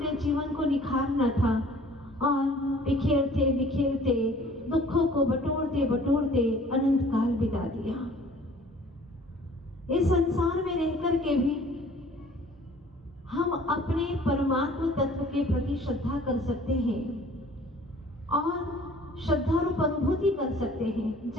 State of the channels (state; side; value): normal; both; correlation 0.52